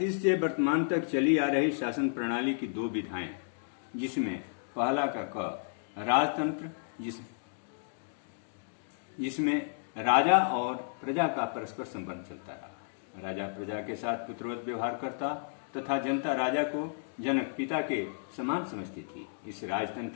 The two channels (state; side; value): silent; right; digital silence